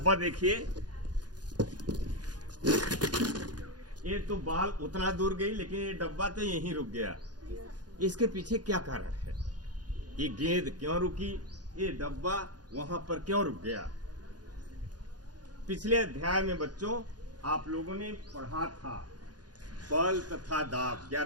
देखिए, ये तो बॉल उतना दूर गई लेकिन ये डब्बा तो यहीं रुक गया। इसके पीछे क्या कारण है? ये गेंद क्यों रुकी? ये डब्बा वहां पर क्यों रुक गया? पिछले अध्याय में बच्चों आप लोगों ने पढ़ा था बल तथा दाब।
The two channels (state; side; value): late; left; 0.69 ms